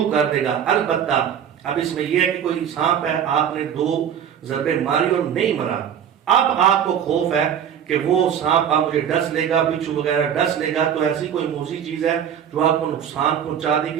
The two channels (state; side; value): quieter; left; 8.8 dB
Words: کر دے گا۔ البتہ اب اس میں یہ ہے کہ کوئی سانپ ہے، آپ نے 2 ضربے ماری اور نہیں مرا، اب آپ کو خوف ہے کہ وہ سانپ آپ مجھے ڈس لے گا، بچھو وغیرہ ڈس لے گا، تو ایسی کوئی موذی چیز ہے جو آپ کو نقصان پہنچا دے